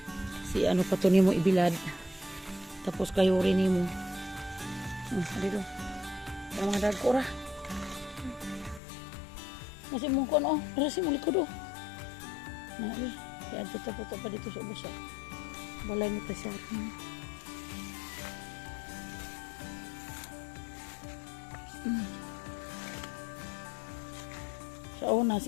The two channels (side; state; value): right; drops out; at 8.8 s